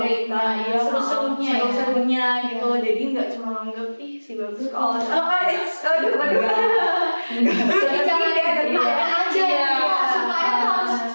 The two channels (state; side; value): inverted; both; correlation -1.00